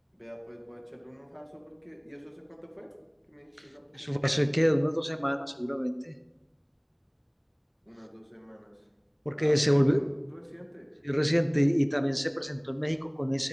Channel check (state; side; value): identical; both; correlation 1.00